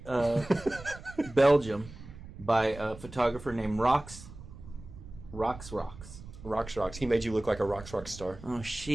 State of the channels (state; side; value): noise; right; rumble, 15 dB below the sound